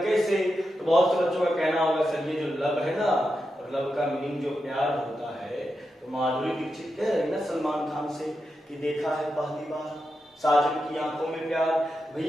तो बहुत से बच्चों का कहना होगा सर ये जो लव है ना, और लव का मीनिंग जो प्यार होता है, तो माधुरी दीक्षित कह रही ना सलमान खान से कि देखा है पहली बार साजन की आंखों में प्यार।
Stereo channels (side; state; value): both; normal; correlation 0.88